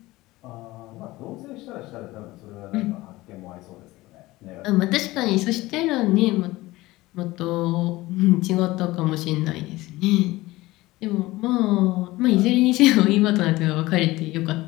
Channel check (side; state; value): right; quieter; 19.0 dB